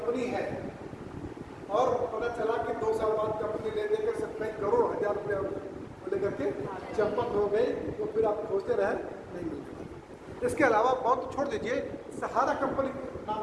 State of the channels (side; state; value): both; identical; correlation 1.00